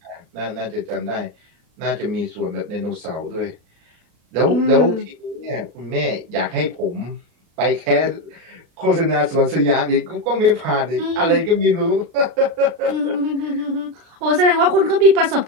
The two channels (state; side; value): late; left; 36 ms